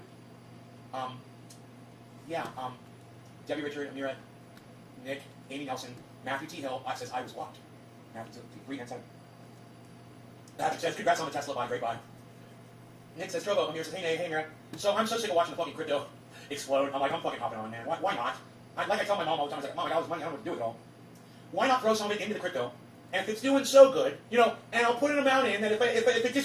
Debbie, Richard, Amira, Nick, Amy Nelson, Matthew T. Hill says I was blocked. Matthew 3 and 7. Patrick says, congrats on the Tesla buy, great buy. Nick says, Trovo, I'm here. Says, hey, Mira. So I'm so sick of watching the fucking crypto explode. I'm like, I'm fucking hopping on, man. Why not? Like I tell my mom all the time, I was like, Mom, I got all this money, I don't know what to do with it all. Why not throw some of it into the crypto? And if it's doing so good, you know, and I'll put an amount in that if it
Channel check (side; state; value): both; identical; correlation 1.00